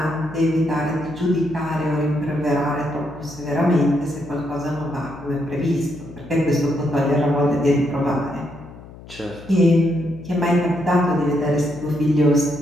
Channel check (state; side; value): noise; left; hum, 18 dB below the sound